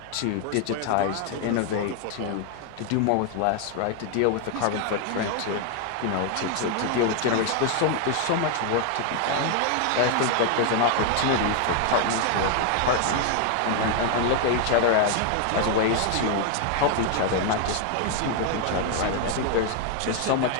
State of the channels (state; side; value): different; both; correlation 0.00